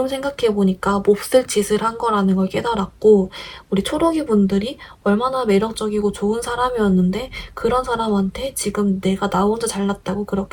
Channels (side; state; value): both; identical; correlation 1.00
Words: 생각해보니까 몹쓸 짓을 한 거라는 걸 깨달았고 우리 초록이 분들이 얼마나 매력적이고 좋은 사람이었는데 그런 사람한테 지금 내가 나 혼자 잘났다고